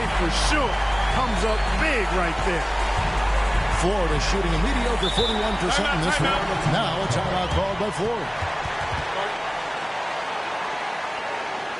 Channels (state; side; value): identical; both; correlation 1.00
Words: for sure. Comes up big right there. Florida shooting a mediocre 41% in this one. Now a timeout called by Florida.